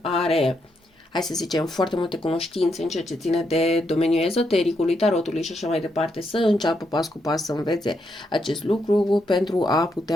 are, hai să zicem, foarte multe cunoștințe în ceea ce ține de domeniul ezotericului, tarotului și așa mai departe, să înceapă pas cu pas să învețe acest lucru pentru a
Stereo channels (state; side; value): normal; both; correlation 0.80